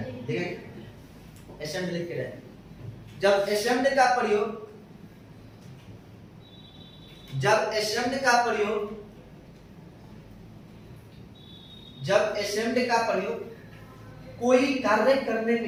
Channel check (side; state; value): both; identical; correlation 1.00